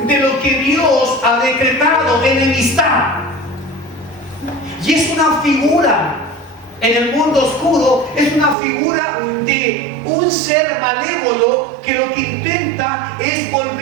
de lo que Dios ha decretado, enemistad. Y es una figura en el mundo oscuro, es una figura de un ser malévolo que lo que intenta es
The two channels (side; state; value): left; drops out; at 8.6 s